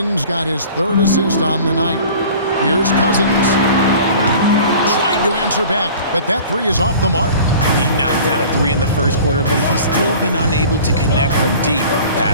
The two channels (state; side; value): inverted; both; correlation -0.44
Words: got his 3rd assist on the night. Here's Cousins. Trying to answer back, but that 3 is off the mark. He knocked down a 3 in the first quarter, but he's still been unable to connect from deep